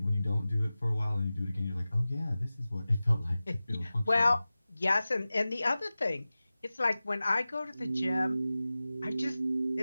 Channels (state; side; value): inverted; both; correlation -0.96